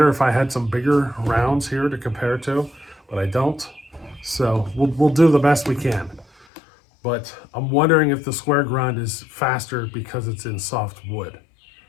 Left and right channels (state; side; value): drops out; right; at 6.5 s